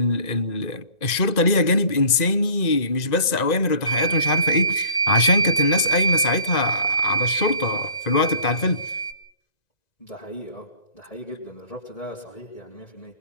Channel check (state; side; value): late; right; 1.9 ms